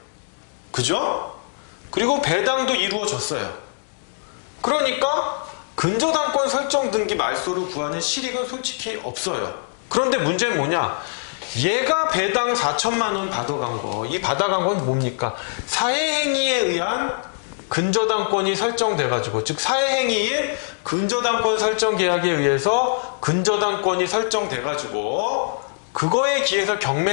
그죠? 그리고 배당도 이루어졌어요. 그러니까 근저당권 설정 등기 말소를 구하는 실익은 솔직히 없어요. 그런데 문제는 뭐냐? 얘가 배당 4,000만 원 받아간 거, 이 받아간 건 뭡니까? 사회행위에 의한 근저당권이 설정돼가지고, 즉 사회행위인 근저당권 설정 계약에 의해서 근저당권이 설정돼가지고 그거에 기해서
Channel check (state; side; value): silent; right; digital silence